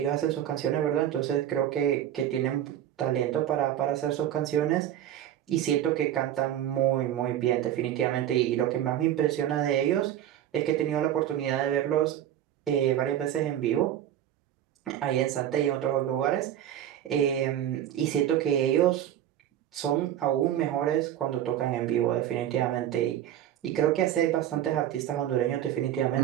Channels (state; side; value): quieter; left; 11.3 dB